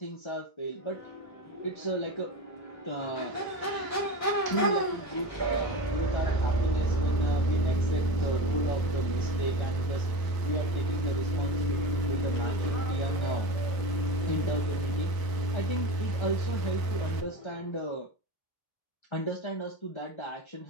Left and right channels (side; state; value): right; late; 1.0 ms